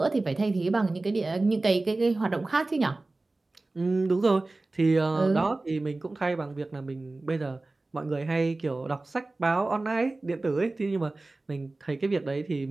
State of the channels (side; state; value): left; quieter; 3.1 dB